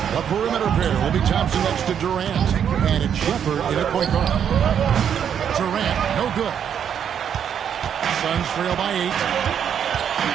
The perimeter pair will be Thompson next to Durant, and it's Shepard in a point guard. Durant, no good. Suns trail by 8.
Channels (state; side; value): quieter; left; 8.5 dB